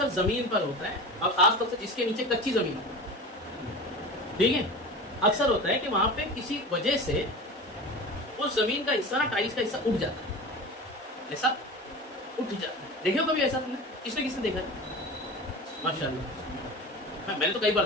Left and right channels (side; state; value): both; normal; correlation 0.31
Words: زمین پر ہوتا ہے، اور خاص طور سے جس کے نیچے کچی زمین ہوتی ہے، ٹھیک ہے، اکثر ہوتا ہے کہ وہاں پہ کسی وجہ سے اس زمین کا حصہ نا، ٹائلس کا حصہ اٹھ جاتا ہے، ایسا اٹھ جاتا ہے، دیکھے ہو کبھی ایسا تم نے؟ کس نے دیکھا ہے؟ ماشاء اللہ، میں نے تو کئی بار